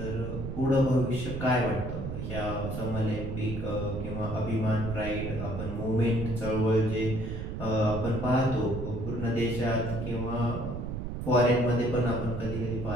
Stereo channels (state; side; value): noise; right; rumble, 5 dB below the sound